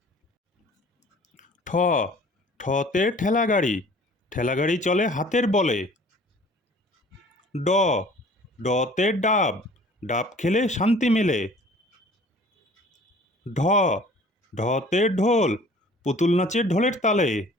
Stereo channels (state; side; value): normal; both; correlation 0.50